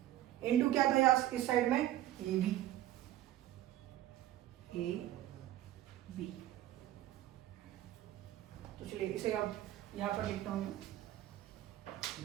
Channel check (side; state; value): left; quieter; 13.6 dB